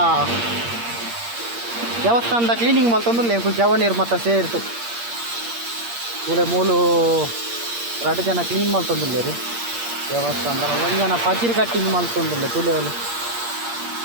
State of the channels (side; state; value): left; late; 8.6 ms